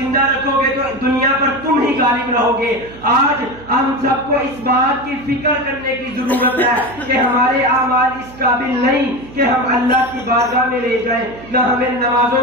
رکھو گے تو دنیا پر تم ہی غالب رہو گے۔ آج ہم سب کو اس بات کی فکر کرنے کی ضرورت ہے کہ ہمارے اعمال اس قابل نہیں کہ ہم اللہ کی بارگاہ میں لے جائیں۔ نہ ہمیں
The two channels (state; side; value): noise; right; hum, 19 dB below the sound